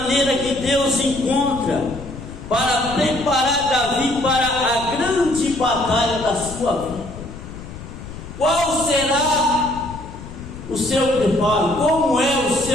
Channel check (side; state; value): left; noise; rumble, 12 dB below the sound